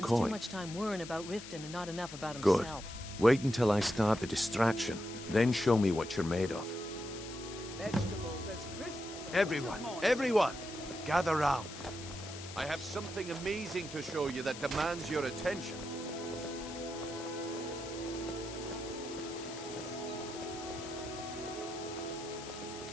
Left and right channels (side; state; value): left; noise; hiss, 12 dB below the sound